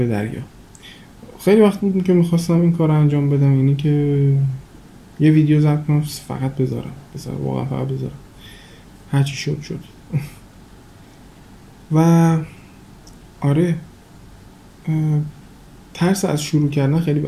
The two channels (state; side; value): identical; both; correlation 1.00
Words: دریا. خیلی وقت بود که میخواستم این کار رو انجام بدم، اینی که یه ویدیو ضبط کنم فقط بذارم واقعا فقط بذارم، هرچی شد و آره ترس از شروع کردن خیلی